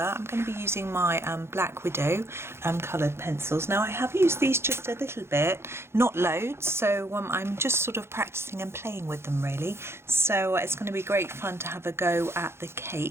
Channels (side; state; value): left; late; 0.12 ms